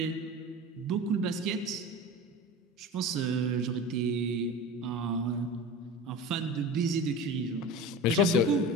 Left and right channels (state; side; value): normal; both; correlation 0.32